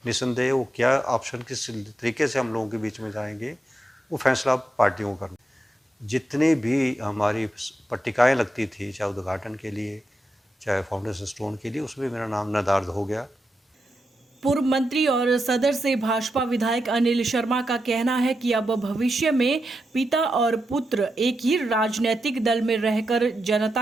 निसंदेह वो क्या ऑप्शन किस तरीके से हम लोगों के बीच में जाएंगे वो फैसला पार्टियों को करना। जितनी भी हमारी पट्टिकाएँ लगती थी, चाहे उद्घाटन के लिए चाहे फाउंडेशन स्टोन के लिए, उसमें मेरा नाम निर्धारित हो गया। पूर्व मंत्री और सदर से भाजपा विधायक अनिल शर्मा का कहना है कि अब भविष्य में पिता और पुत्र एक ही राजनीतिक दल में रहकर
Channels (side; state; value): both; normal; correlation 0.86